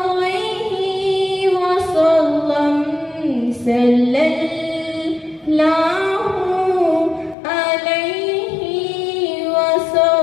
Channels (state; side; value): drops out; right; at 7.4 s